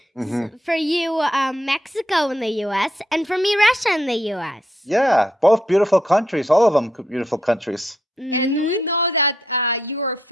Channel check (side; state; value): both; normal; correlation 0.77